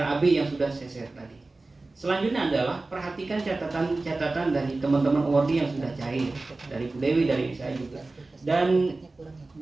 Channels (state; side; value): quieter; left; 3.3 dB